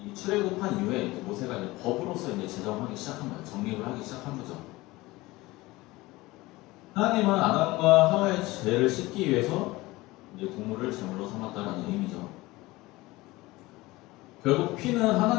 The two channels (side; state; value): right; quieter; 20.2 dB